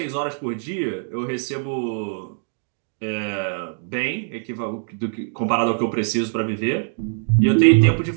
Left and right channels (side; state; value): left; silent; digital silence